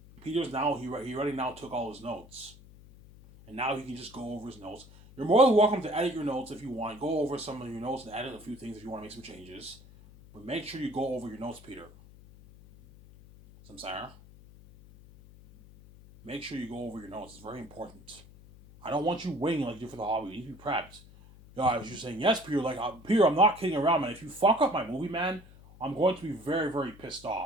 Peter's now, he already now took all his notes. And now he can just go over his notes. You're more than welcome to edit your notes if you want. Go over some of your notes and edit a few things if you want to make some changes. But make sure you go over your notes, Peter. Samsara. Make sure you go over your notes. It's very important. I don't want you winging like you do for the hobby. You need to be prepped. Yeah, I was just saying, yes, Peter. Like, Peter, I'm not kidding around, man. If you fuck up my movie, man, I'm going to be very, very pissed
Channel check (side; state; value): left; noise; hum, 21 dB below the sound